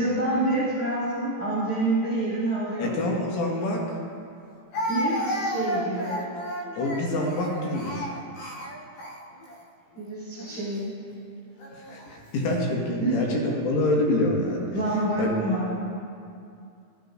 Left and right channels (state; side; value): late; right; 18 ms